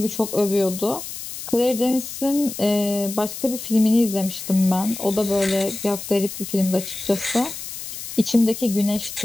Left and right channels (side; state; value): left; noise; hiss, 9 dB below the sound